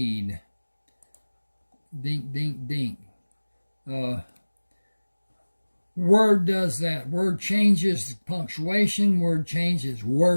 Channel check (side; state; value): both; inverted; correlation -1.00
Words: Dink, dink, dink. Word does that. Word changes punctuation. Word changes